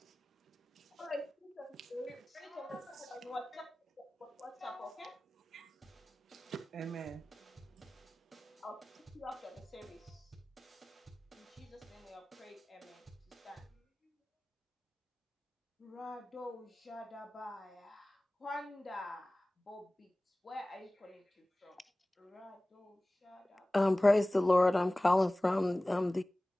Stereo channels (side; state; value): both; normal; correlation 0.98